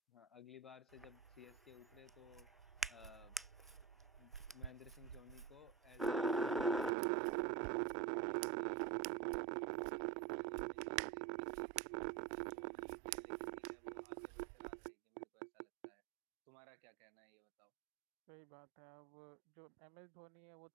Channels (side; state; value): left; drops out; at 6.9 s